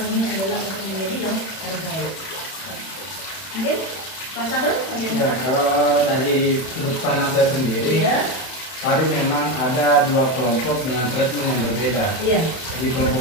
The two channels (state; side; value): late; right; 31 ms